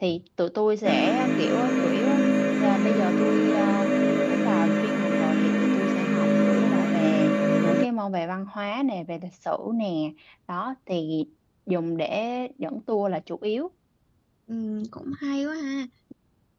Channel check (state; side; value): identical; both; correlation 1.00